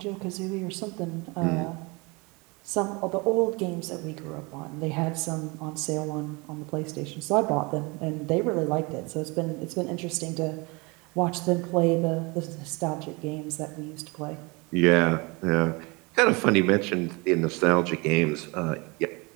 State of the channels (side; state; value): left; quieter; 27.3 dB